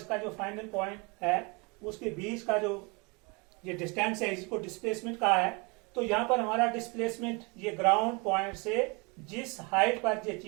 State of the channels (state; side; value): quieter; left; 29.7 dB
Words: जो फाइनल पॉइंट है उसके बीच का जो ये डिस्टेंस है, इसको डिस्प्लेसमेंट कहा है। तो यहां पर हमारा डिस्प्लेसमेंट, ये ग्राउंड पॉइंट से जिस हाइट पर ये